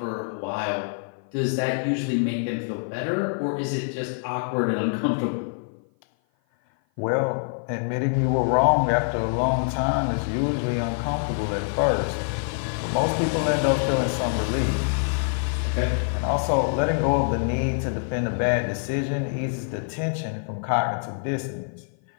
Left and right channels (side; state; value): right; silent; 55 dB below the other